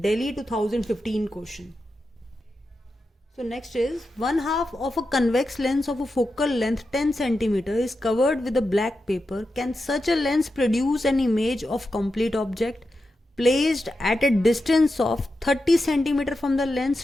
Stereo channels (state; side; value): normal; both; correlation 0.89